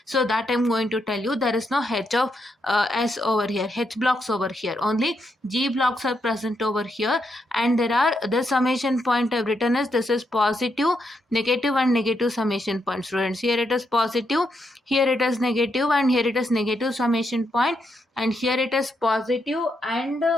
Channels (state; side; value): normal; both; correlation 0.80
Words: So that I'm going to tell you. There is no h of s over here, h blocks over here, only g blocks are present over here. And there are the summation point I've written as this is positive, negative and negative summation point. Students, here it is positive, here it is negative, and here it is negative summation point, and here it is positive and